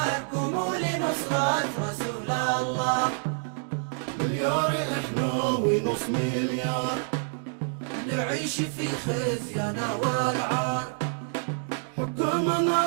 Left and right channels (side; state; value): left; silent; 60 dB below the other